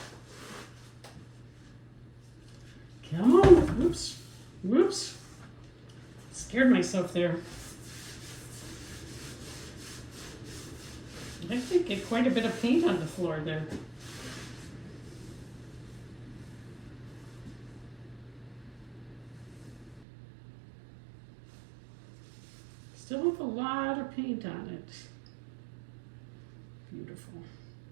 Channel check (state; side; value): drops out; left; at 20.0 s